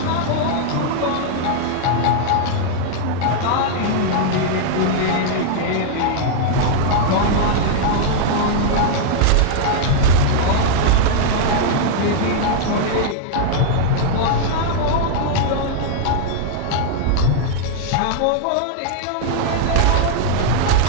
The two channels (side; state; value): both; different; correlation -0.01